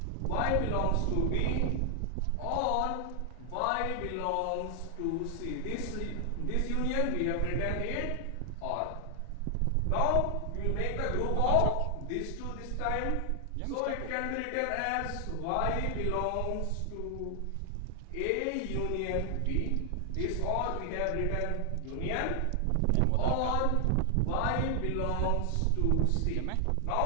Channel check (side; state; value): both; different; correlation 0.00